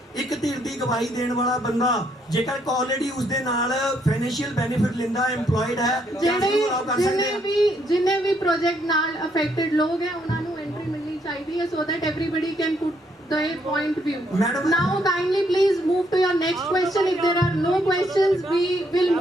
ਇੱਕ ਧਿਰ ਦੀ ਗਵਾਹੀ ਦੇਣ ਵਾਲਾ ਬੰਦਾ ਜੇਕਰ ਆਲਰੇਡੀ ਉਸ ਦੇ ਨਾਲ ਫਾਈਨੈਂਸ਼ੀਅਲ ਬੈਨੀਫਿਟ ਲੈਂਦਾ ਐਮਪਲੋਇਡ ਹੈ, ਜਿੰਨੇ ਵੀ ਪ੍ਰੋਜੈਕਟ ਨਾਲ ਅਫੈਕਟਡ ਲੋਕ ਹੈ ਉਹਨਾਂ ਨੂੰ ਐਂਟਰੀ ਮਿਲਣੀ ਚਾਹੀਦੀ ਹੈ so that everybody can put their point of view. Now kindly please move to your next question. If there are no questions we will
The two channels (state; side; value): normal; both; correlation 0.72